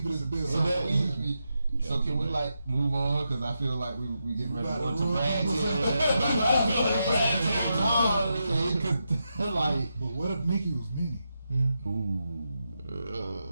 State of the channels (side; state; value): both; inverted; correlation -0.86